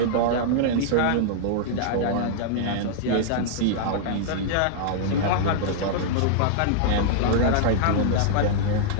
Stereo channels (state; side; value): different; both; correlation -0.01